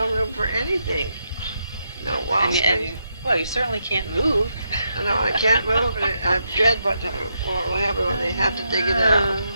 room for anything. No wall space. Well, you certainly can't move. No, I can't move, and I dread what will happen when they have to dig it out.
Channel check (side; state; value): both; inverted; correlation -0.81